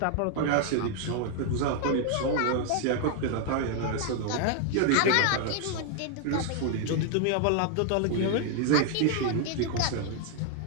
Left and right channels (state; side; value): different; both; correlation 0.00